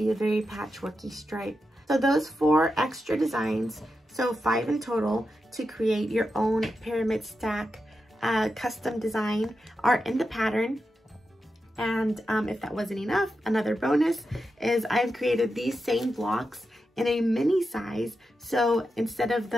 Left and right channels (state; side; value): normal; both; correlation 0.88